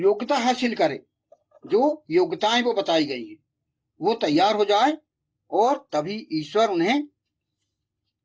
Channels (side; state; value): both; identical; correlation 1.00